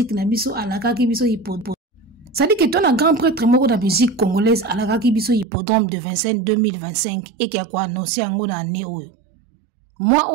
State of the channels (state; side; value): drops out; left; at 5.5 s